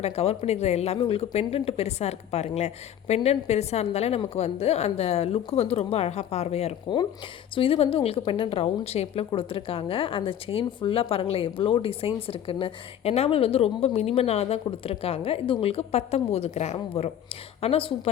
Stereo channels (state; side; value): quieter; right; 10.2 dB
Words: நான் கவர் பண்ணிக்கிற எல்லாமே உங்களுக்கு பெண்டன்ட் பெருசாக இருக்குது பாருங்களேன். பெண்டன்ட் பெருசாக இருந்தாலே நமக்கு வந்து அந்த லுக்கு வந்து ரொம்ப அழகாக பார்வையாக இருக்கும். ஸோ இது வந்து உங்களுக்கு பெண்டன்ட் ரவுண்ட் ஷேப்பில் கொடுத்துருக்காங்க. அந்த செயின் ஃபுல்லாக பாருங்களேன் எவ்வளோ டிசைன்ஸ் இருக்குன்னு. எனாமல் வந்து ரொம்ப மினிமனாக தான் கொடுத்துருக்காங்க. இது உங்களுக்கு 19 கிராம் வரும். ஆனால்